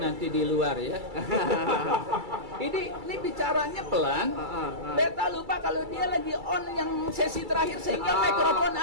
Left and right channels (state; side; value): late; left; 2.3 ms